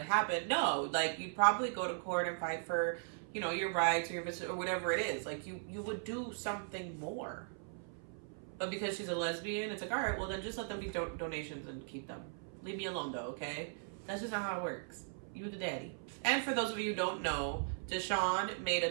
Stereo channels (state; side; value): silent; left; 52 dB below the other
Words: happen? No, like you'd probably go to court and fight for, you know, your rights or your or whatever it is. Like you would do something more. But because she's a lesbian, it's like, all right, well, then just let them be donations and keep them. Leave me alone, though, okay? That's just not how it works. You the daddy. And for those of you who don't know, Deshaun made